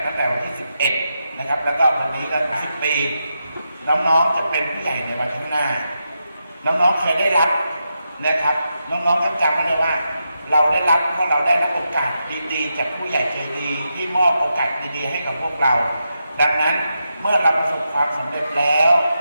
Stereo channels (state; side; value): inverted; both; correlation -0.86